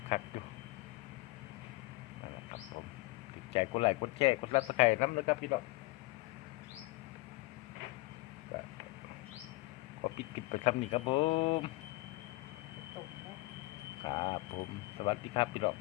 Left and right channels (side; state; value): right; quieter; 22.1 dB